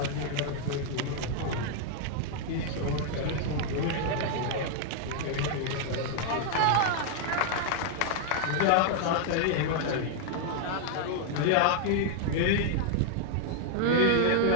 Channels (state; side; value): different; both; correlation 0.00